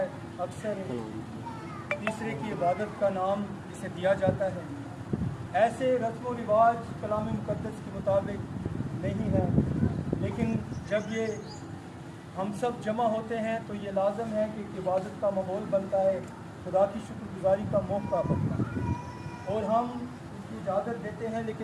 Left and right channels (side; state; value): both; identical; correlation 1.00